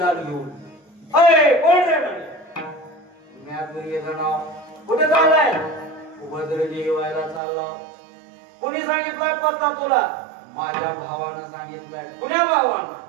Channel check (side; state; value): left; drops out; at 7.4 s